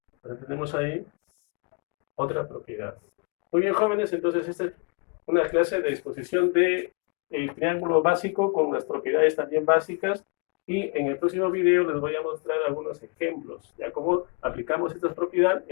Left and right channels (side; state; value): right; quieter; 33.2 dB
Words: Entonces tenemos ahí otra propiedad. Muy bien, jóvenes, entonces esta es una clase de exposición del triángulo básico con las propiedades también básicas, y en el próximo video les voy a mostrar algunos ejemplos, ya cómo aplicamos esta propiedad